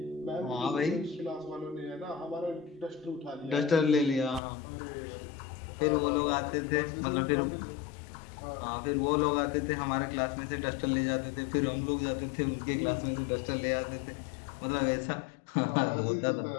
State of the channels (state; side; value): drops out; right; at 4.4 s